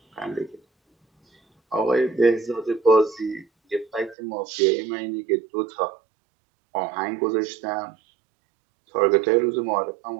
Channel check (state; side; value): drops out; left; at 4.2 s